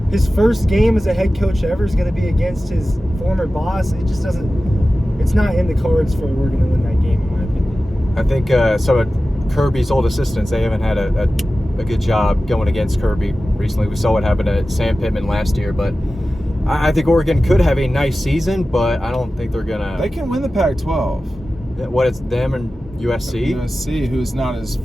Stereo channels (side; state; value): both; normal; correlation 0.95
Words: his first game as a head coach ever is going to be against his former boss. It just it's not in the cards for Oregon to win that game, in my opinion. I think some of Kirby's old assistants, they haven't had a good job going against Kirby recently. We saw what happened to Sam Pittman last year, but I think Oregon could have a nice season, but I don't think they're going to. They can win the Pac-12. What, it's them and USC? USC, who's not as